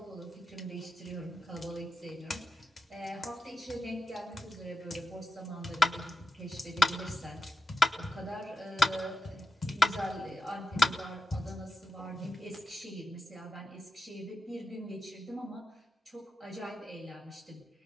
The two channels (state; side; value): normal; both; correlation 0.90